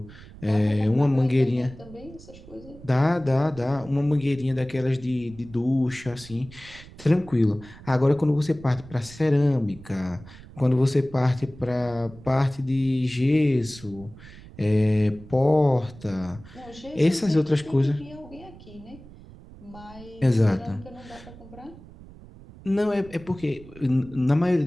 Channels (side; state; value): right; noise; rumble, 19 dB below the sound